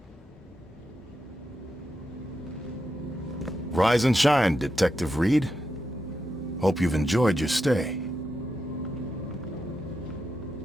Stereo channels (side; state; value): both; normal; correlation 0.86